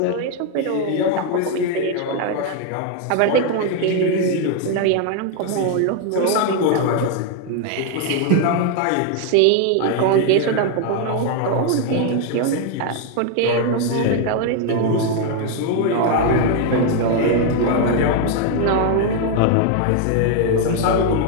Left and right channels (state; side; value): different; both; correlation 0.01